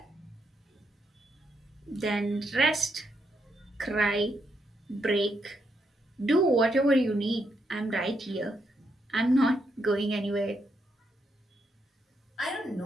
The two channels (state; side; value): normal; both; correlation 0.79